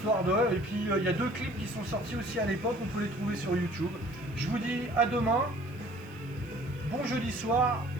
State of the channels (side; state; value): right; noise; hiss, 28 dB below the sound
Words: de... Et puis, il y a 2 clips qui sont sortis aussi à l'époque, on peut les trouver sur YouTube. Je vous dis à demain, bon jeudi soir,